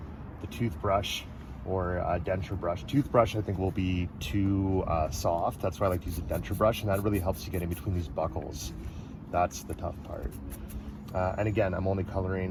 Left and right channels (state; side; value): identical; both; correlation 1.00